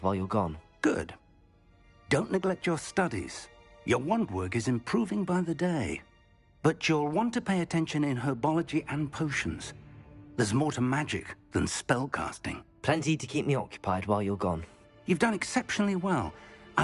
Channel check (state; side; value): identical; both; correlation 1.00